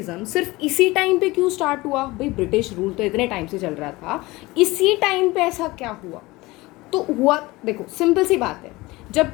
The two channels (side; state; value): right; quieter; 21.1 dB